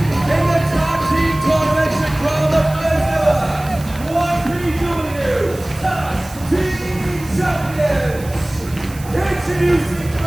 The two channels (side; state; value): right; noise; hiss, 18 dB below the sound